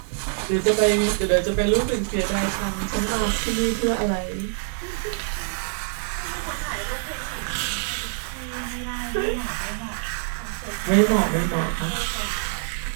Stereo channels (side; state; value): left; silent; digital silence